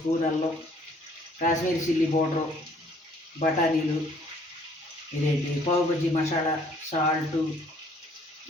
అల్లం, కాశ్మీరీ చిల్లీ పౌడరు, బఠానీలు, ఇదేంటి పావు బజ్జీ మసాలా, సాల్టు,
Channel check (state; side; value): normal; both; correlation 0.60